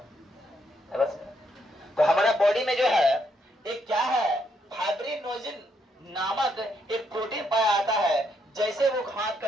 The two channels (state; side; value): normal; both; correlation 0.75